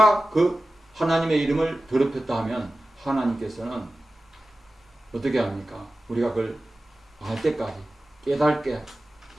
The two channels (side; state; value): both; normal; correlation 0.95